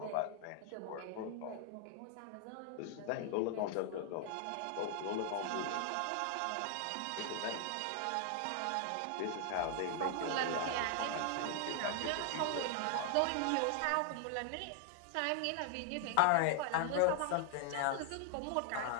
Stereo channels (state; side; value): different; both; correlation 0.00